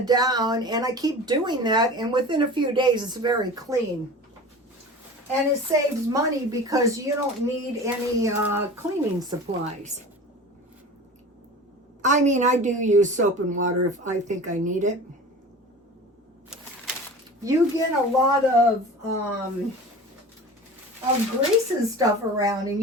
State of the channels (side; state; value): both; normal; correlation 0.36